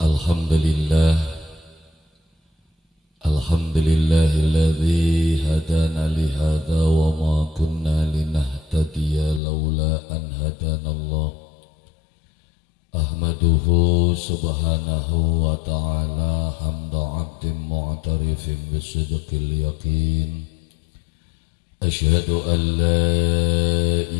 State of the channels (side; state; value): right; drops out; at 9.4 s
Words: Alhamdulillah, alhamdulillahilladzi hadana lihada wa ma kunna linahtadiya laula an hadanallah. Ahmaduhu subhanahu wa ta'ala hamda abdin mu'tarifin bisidqil yaqin. Ashhadu an la